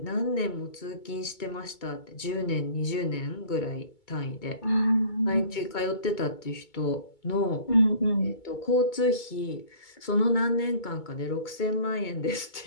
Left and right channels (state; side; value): late; right; 2.2 ms